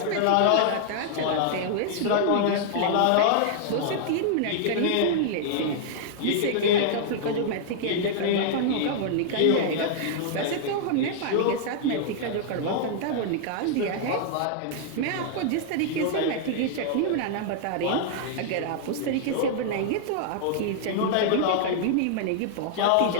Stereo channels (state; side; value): different; both; correlation -0.01